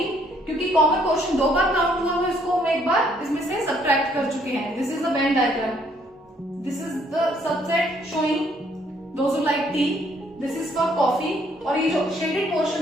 क्योंकि कॉमन पोर्शन दो बार काउंट हुआ, तो इसको हम एक बार इसमें से सब्ट्रैक्ट कर चुके हैं। This is the Venn diagram, this is the subset showing those who like T, this is for coffee, और ये जो शेडेड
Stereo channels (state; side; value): normal; both; correlation 0.66